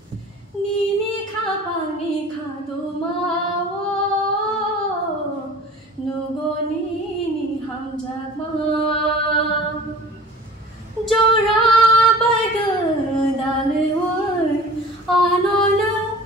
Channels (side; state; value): both; normal; correlation 0.42